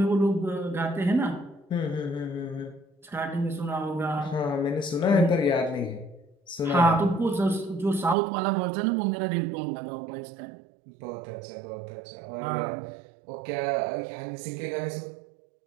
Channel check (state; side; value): drops out; left; at 8.2 s